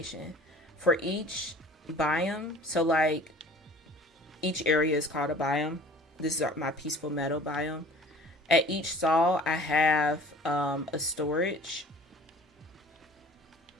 for each biome. So like each area is called a biome. This is my Peaceful Meadow biome. At each stall I have a storage.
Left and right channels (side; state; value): both; normal; correlation 0.47